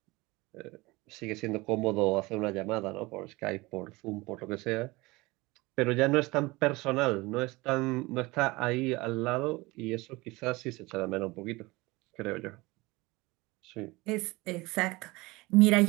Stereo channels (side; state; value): left; quieter; 22.5 dB